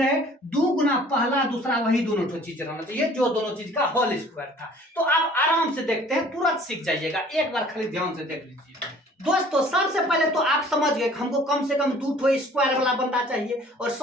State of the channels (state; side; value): normal; both; correlation 0.52